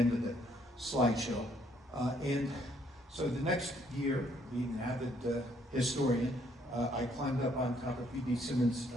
of the slideshow. And so the next year, being an avid historian, I climbed up on top of B.D. Simmons'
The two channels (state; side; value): normal; both; correlation 0.68